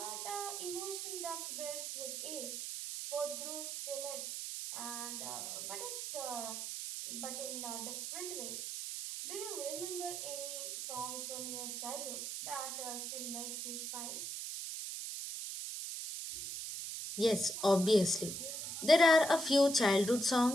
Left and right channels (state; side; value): noise; right; hiss, 5 dB below the sound